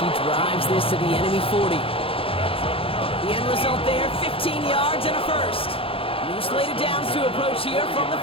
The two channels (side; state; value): right; late; 0.27 ms